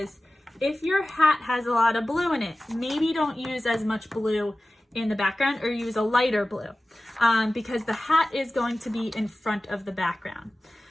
if your hat has a lot of blue in it, maybe don't use as much blue in the background, or use a lighter blue, because the hat is going to be in front of the background.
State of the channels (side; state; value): both; normal; correlation 0.96